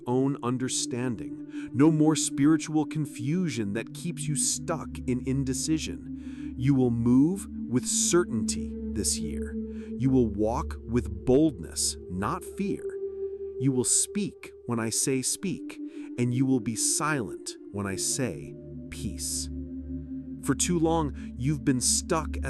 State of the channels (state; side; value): identical; both; correlation 1.00